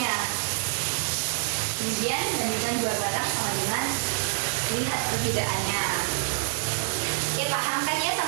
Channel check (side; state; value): left; silent; digital silence